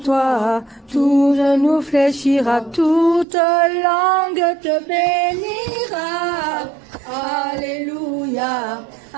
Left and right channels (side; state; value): left; drops out; at 3.2 s